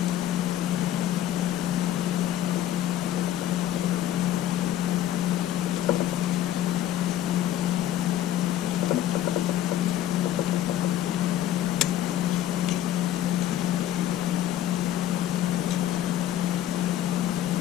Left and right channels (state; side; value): quieter; right; 12.0 dB